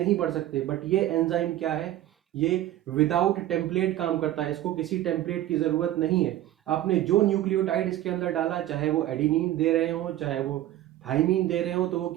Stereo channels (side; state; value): left; quieter; 13.6 dB